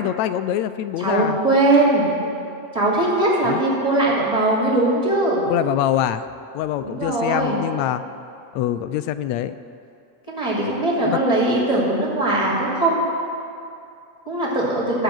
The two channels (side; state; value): right; late; 8.9 ms